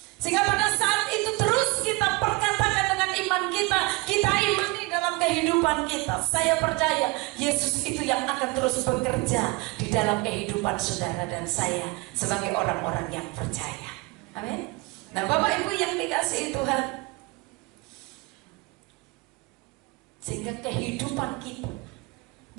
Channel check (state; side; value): quieter; left; 24.6 dB